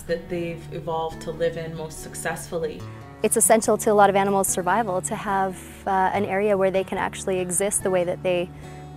that they've evolved to live in most successfully. It's essential to a lot of animals' survival to have an area where they can actually exist the way that they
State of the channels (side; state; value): both; identical; correlation 1.00